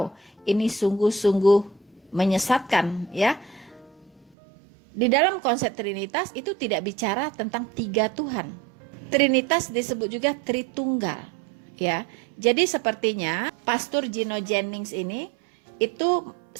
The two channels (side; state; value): left; drops out; at 4.3 s